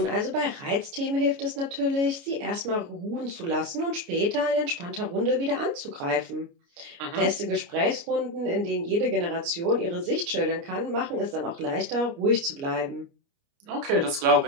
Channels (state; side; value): late; left; 29 ms